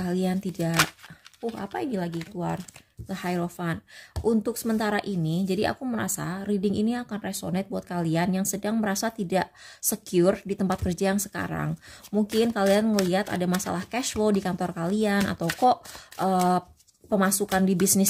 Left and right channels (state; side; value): identical; both; correlation 1.00